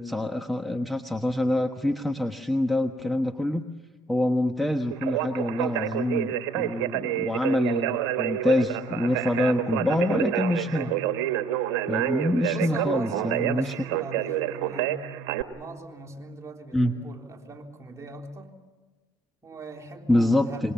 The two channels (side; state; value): both; normal; correlation 0.67